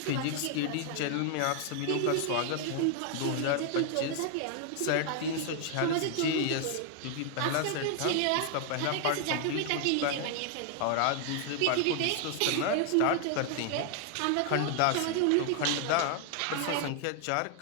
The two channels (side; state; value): both; different; correlation 0.00